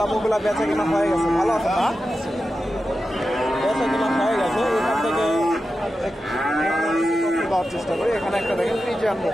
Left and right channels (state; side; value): normal; both; correlation 0.91